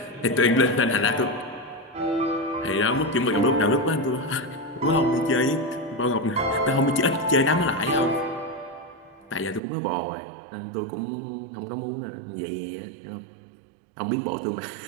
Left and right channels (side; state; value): left; drops out; at 9.6 s